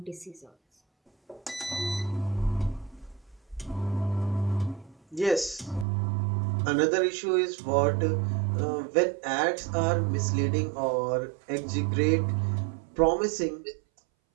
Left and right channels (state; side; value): drops out; left; at 5.9 s